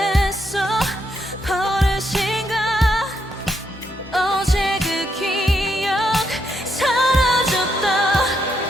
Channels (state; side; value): normal; both; correlation 0.78